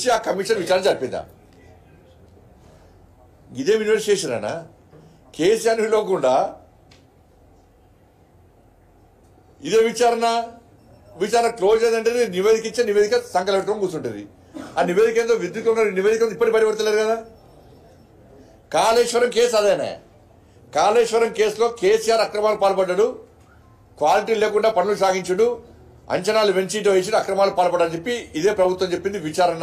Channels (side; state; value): both; identical; correlation 1.00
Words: ఆ కమిషన్ విచారణ జరిపిందా? ఇదే ఇన్వెస్టిగేషన్ అనా? కేసీఆర్ పిలవకుండా ఇదే విచారణ క్లోజ్ అయిందంటే నివేదిక ఇచ్చే నివేదిక సంకలం పెట్టుకొని కూర్చుంటుంది. ఆ నివేదిక ఏందో విద్యుత్ నివేదిక ఇప్పటికి బయటపడతలేరు కదా. కాళేశ్వరం కేసు అదేనే. కాళేశ్వరం కేసులో కేసీఆర్ అక్రమాలు పాల్పడ్డాడు, క్వాలిటీ లేకుండా పనులు సాగించుడు, అంచనాలు పెంచిటో వేసి అక్రమాలు పాల్పడని చెప్పి ఇదే ప్రభుత్వం చెప్పింది. విచారణ